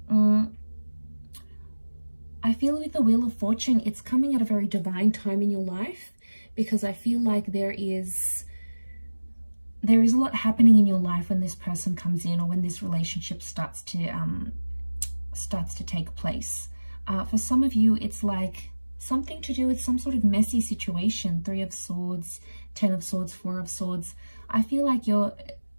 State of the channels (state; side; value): inverted; both; correlation -1.00